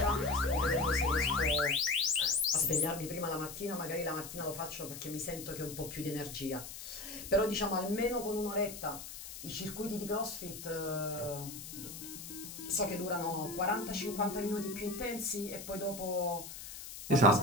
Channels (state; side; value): noise; left; hiss, 11 dB below the sound